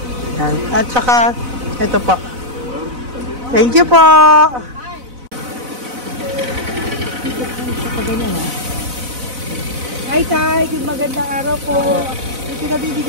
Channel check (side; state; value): left; late; 4.0 ms